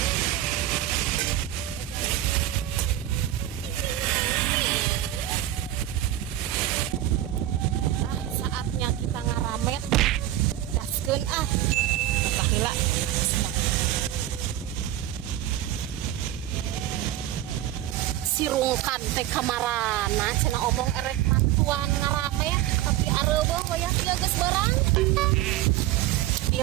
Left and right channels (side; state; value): left; quieter; 13.5 dB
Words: Sirungkan teh kamarana cenah omong erek mantuan ngarame tapi areueuh wayah dia geus barang